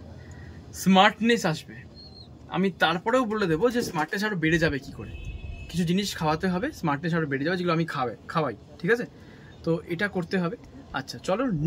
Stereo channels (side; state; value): both; identical; correlation 1.00